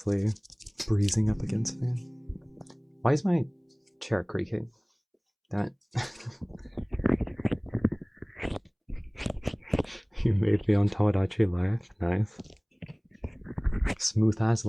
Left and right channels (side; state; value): both; identical; correlation 1.00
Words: breezing up against me. Why is my chair creaking? Damn it. You made me on Tomodachi Life. Nice. Smooth as